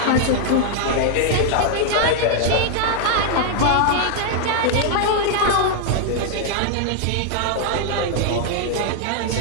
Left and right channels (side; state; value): both; different; correlation 0.00